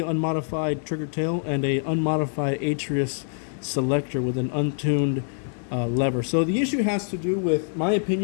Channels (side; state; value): right; silent; 62 dB below the other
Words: unmodified trigger tail, and a unmodified Atrius selector with an untuned lever. So the issue has to do with, my